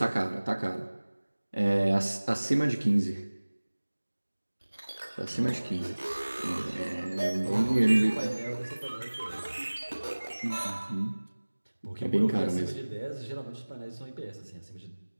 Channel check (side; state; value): both; inverted; correlation -1.00